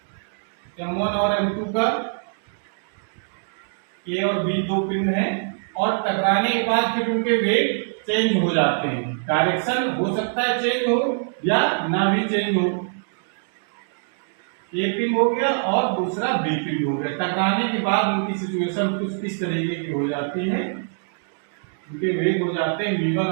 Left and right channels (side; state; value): left; silent; digital silence